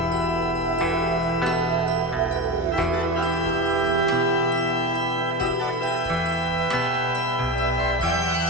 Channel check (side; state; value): both; normal; correlation 0.25